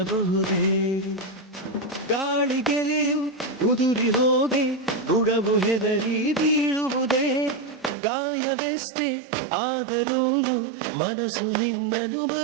ಗಾಳಿಗೆಲೆಯು ಉದುರಿ ಹೋಗಿ ಗುಡವು ಹೆದರಿ ಬೀಳುವುದೇ. ಗಾಯವೆಷ್ಟೇ ಆದರೂನು ಮನಸ್ಸು ನಿನ್ನನ್ನು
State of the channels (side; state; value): left; drops out; at 8.0 s